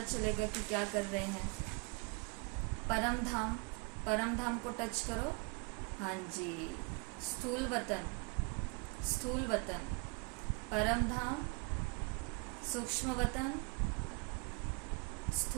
चलेगा कि क्या कर रहे हैं। परम धाम, परम धाम को टच करो। हाँ जी, स्थूल वतन, स्थूल वतन, परम धाम, सूक्ष्म वतन,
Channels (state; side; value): quieter; left; 30.6 dB